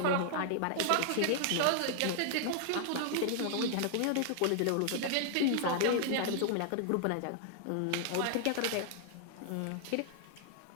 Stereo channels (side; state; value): both; different; correlation 0.00